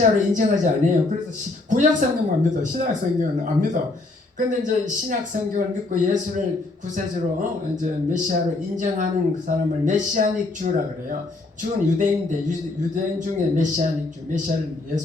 인정하지 않아요. 그래서 구약 성경만 믿어. 신약 성경은 안 믿어. 근데 이제 신약 성경을 믿고 예수를 구세주로 이제 메시아로 인정하는 그 사람을 메시아닉 주라 그래요. 주는 유대인인데 유대인 중에 메시아닉 주, 메시아를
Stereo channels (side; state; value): right; quieter; 3.1 dB